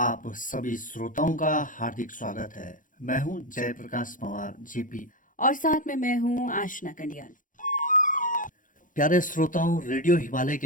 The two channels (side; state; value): right; late; 0.38 ms